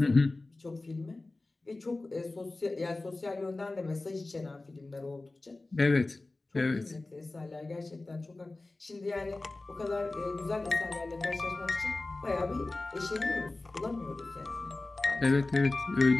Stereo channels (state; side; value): quieter; right; 3.1 dB